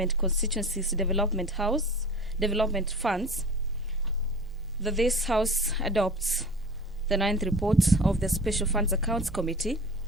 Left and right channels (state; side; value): normal; both; correlation 0.38